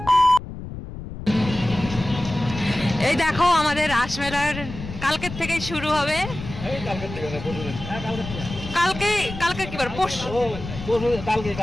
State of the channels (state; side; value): noise; left; rumble, 10 dB below the sound